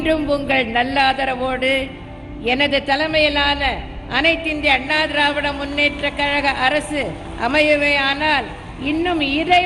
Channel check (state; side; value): identical; both; correlation 1.00